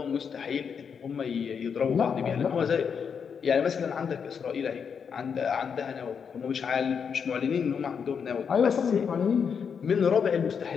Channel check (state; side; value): quieter; right; 6.7 dB